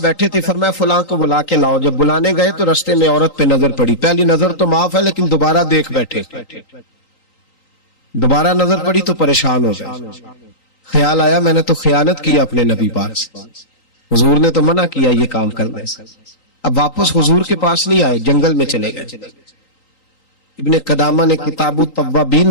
تھے، فرمایا فلاں کو بلا کے لاؤ۔ جب بلانے گئے تو رستے میں عورت پہ نظر پڑی، پہلی نظر تو معاف ہے لیکن دوبارہ دیکھ بیٹھے، دوبارہ نظر پڑی تو پریشان ہو گئے، خیال آیا میں نے تو خیانت کی اپنے نبی پاک سے، حضور نے تو منع کیا یہ کام کرنے سے۔ اب واپس حضور کے پاس نہیں آئے، جنگل میں چلے گئے۔ ابن قدامہ نے کتاب التوابین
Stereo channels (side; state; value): right; late; 3.9 ms